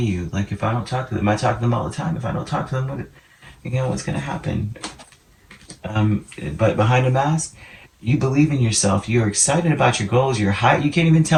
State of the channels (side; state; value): both; identical; correlation 1.00